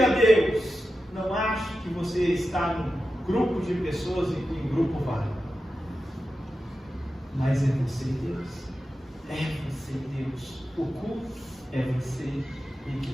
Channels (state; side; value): normal; both; correlation 0.92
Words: Deus. Não ache que você está num grupo de pessoas e que em grupo vale. Mas é você e Deus. É você e Deus. O culto é você e